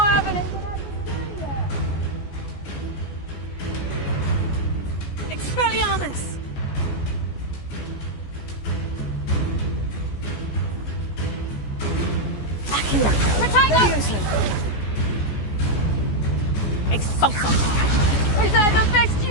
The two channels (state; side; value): late; right; 14 ms